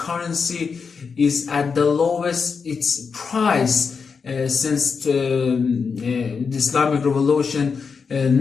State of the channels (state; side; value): quieter; right; 5.5 dB